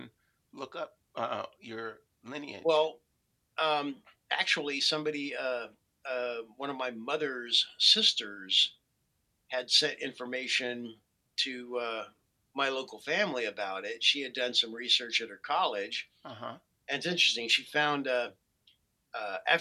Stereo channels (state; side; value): identical; both; correlation 1.00